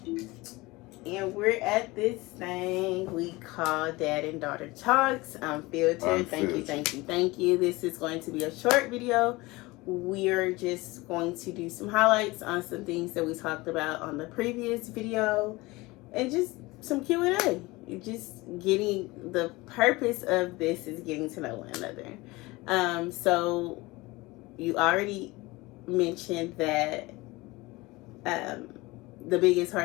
And we're at this thing we call Dad and Daughter Talks. Unfiltered. Thank you. This is going to be a short video. We're just going to do some highlights on some things that we talked about on the previous video, and just some Q&A. Just getting, the purpose of this is getting to know one another. So you already mentioned that the biggest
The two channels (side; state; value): right; quieter; 21.8 dB